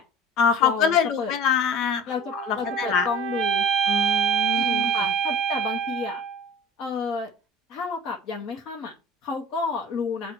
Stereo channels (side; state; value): both; normal; correlation 0.39